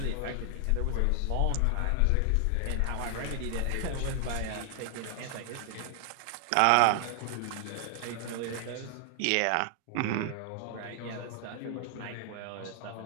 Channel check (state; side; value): different; both; correlation 0.00